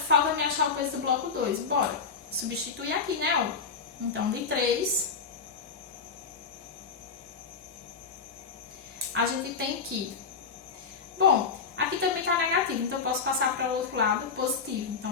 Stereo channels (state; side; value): quieter; right; 5.4 dB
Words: me achar o peso do bloco 2. Bora. Substituir aqui, né? Ó. Então, de 3, a gente tem que... Bom, aqui também tá negativo, então eu posso passar para o outro lado positivo.